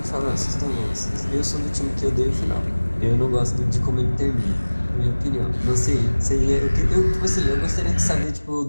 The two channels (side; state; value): both; inverted; correlation -1.00